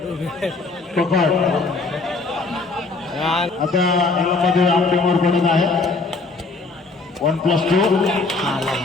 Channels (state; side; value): quieter; right; 3.7 dB